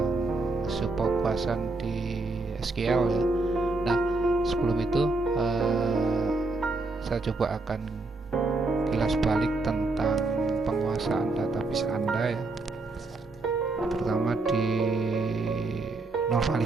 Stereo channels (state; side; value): quieter; left; 3.3 dB